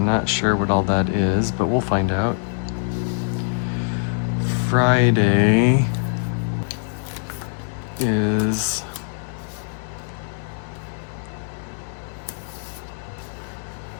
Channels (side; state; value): right; silent; 58 dB below the other